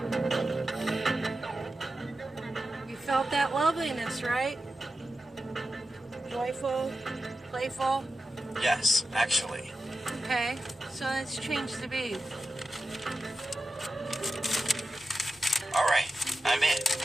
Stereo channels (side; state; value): both; normal; correlation 0.91